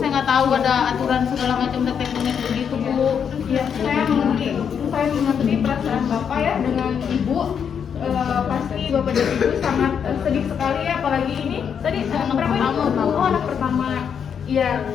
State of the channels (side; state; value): right; quieter; 7.5 dB